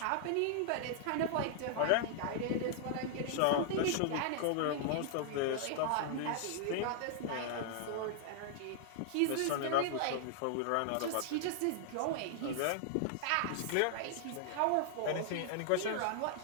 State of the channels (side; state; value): both; different; correlation -0.01